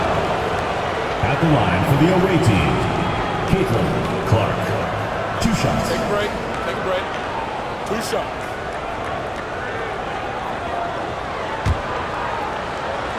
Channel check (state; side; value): identical; both; correlation 1.00